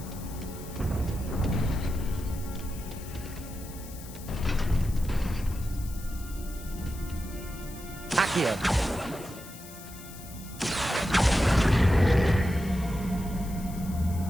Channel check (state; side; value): noise; left; hiss, 16 dB below the sound